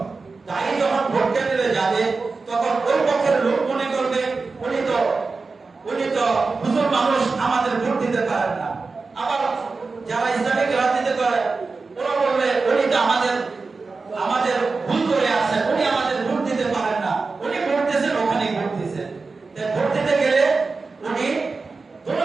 দায়ী যখন ভোট কেন্দ্রে যাবে তখন ওই পক্ষের লোক মনে করবে উনি তো হুজুর মানুষ, আমাদের ভোট দিতে পারেন না। আবার যারা ইসলামিক রাজনীতি করে ওরা বলবে উনি তো আমাদের ভুল করে আছেন, উনি আমাদের ভোট দিতে পারেন না, উনি ভোট দিয়েছেন ওখানেই ভোট দিয়েছেন। ভোট দিতে গেলে উনি কোনো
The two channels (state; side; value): quieter; left; 4.1 dB